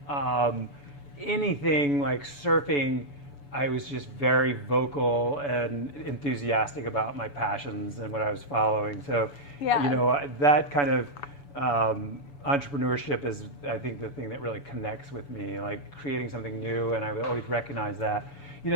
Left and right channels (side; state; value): right; late; 7.0 ms